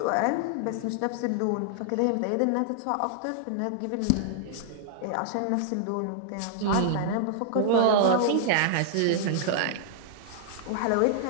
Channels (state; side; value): different; both; correlation -0.01